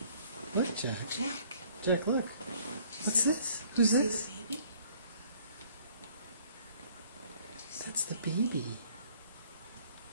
Look, Jack. Jack. Jack, look. What's this? Who's this? See the baby? That's the baby.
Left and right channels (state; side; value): inverted; both; correlation -0.57